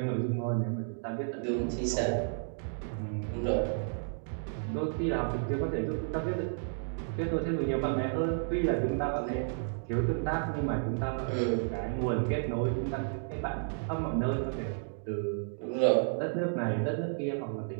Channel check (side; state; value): left; silent; digital silence